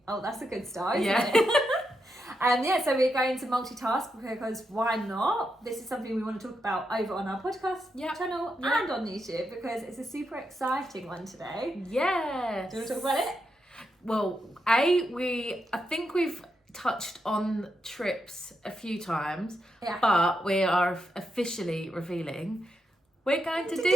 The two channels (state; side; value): normal; both; correlation 0.84